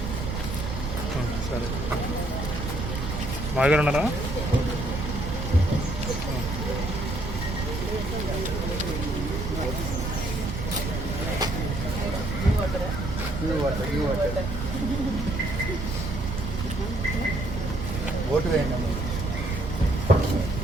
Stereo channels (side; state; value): right; noise; rumble, 4 dB below the sound